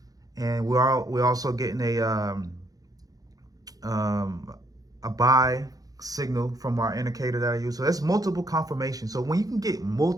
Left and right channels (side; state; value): left; late; 0.18 ms